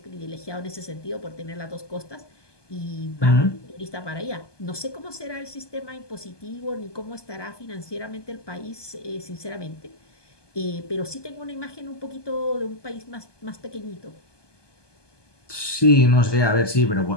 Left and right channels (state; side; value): late; right; 1.2 ms